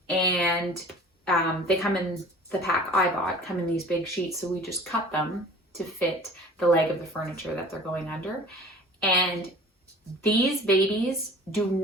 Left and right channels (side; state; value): both; normal; correlation 0.45